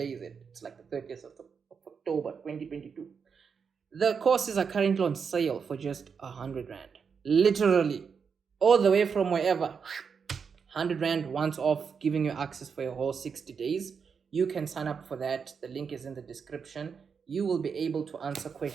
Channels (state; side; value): quieter; left; 6.1 dB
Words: is it? It's like the 30th of October 2022. The courses are currently on sale for just 100 Rand. Literally, all the way from wherever. 100 Rand once off, giving you access for your whole 60 days. You can sign up for that. The link is in the description. You will be able to answer